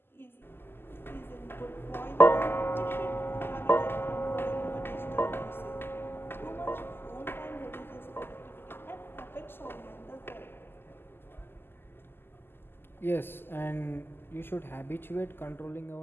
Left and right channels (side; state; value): right; late; 0.11 ms